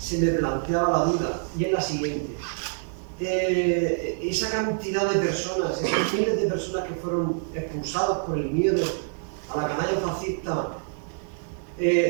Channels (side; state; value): left; silent; 61 dB below the other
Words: me planteaba la duda, y es la siguiente. Esa cantidad de personas, esos miles de personas que fueron expulsados por el miedo a la canalla fascista,